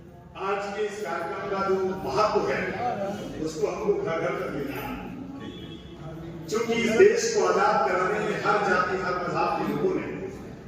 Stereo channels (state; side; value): identical; both; correlation 1.00